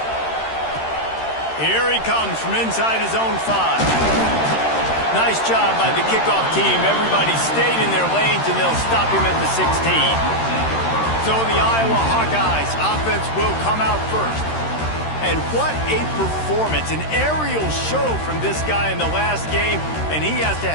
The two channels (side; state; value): right; late; 13 ms